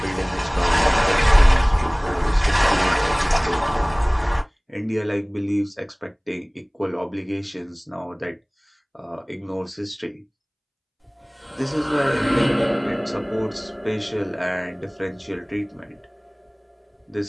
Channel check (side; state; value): both; identical; correlation 1.00